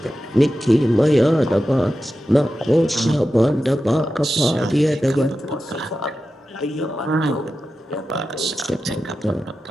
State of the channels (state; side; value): normal; both; correlation 0.92